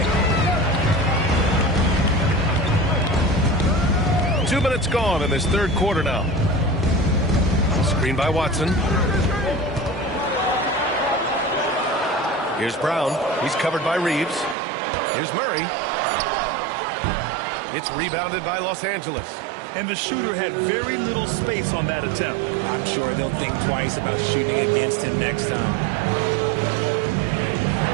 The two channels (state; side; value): drops out; left; at 14.6 s